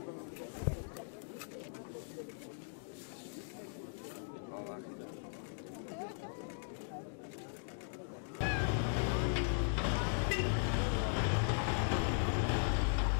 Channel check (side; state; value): right; silent; digital silence